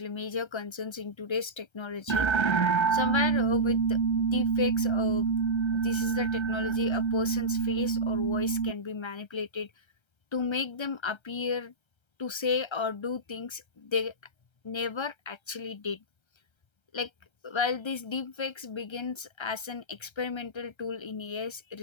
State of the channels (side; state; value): right; late; 1.3 ms